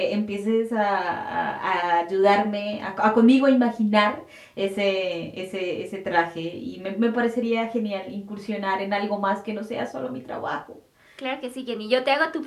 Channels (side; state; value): both; identical; correlation 1.00